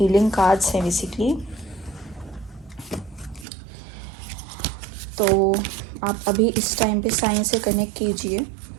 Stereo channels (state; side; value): drops out; left; at 3.5 s